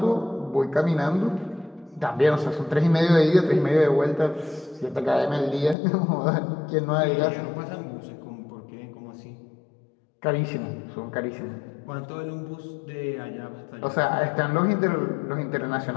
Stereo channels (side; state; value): right; drops out; at 5.8 s